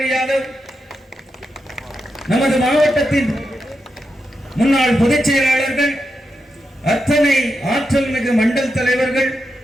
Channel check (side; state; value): both; normal; correlation 0.87